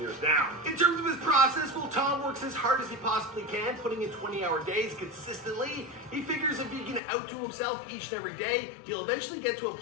now. In terms of his process, well, Tom works as hard as he possibly can, putting in 20-hour days consistently. He figures if he can outdo himself each and every day, he'll eventually get to a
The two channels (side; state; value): right; drops out; at 7.0 s